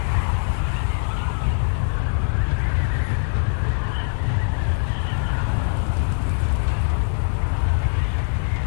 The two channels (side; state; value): right; silent; digital silence